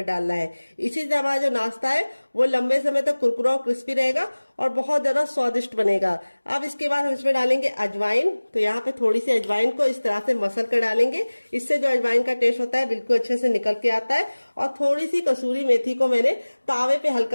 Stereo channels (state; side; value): inverted; both; correlation -1.00